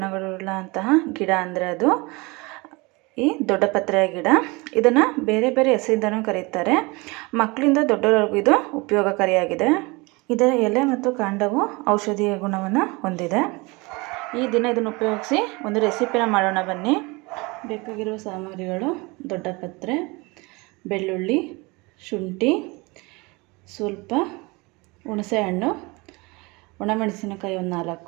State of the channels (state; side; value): quieter; left; 25.6 dB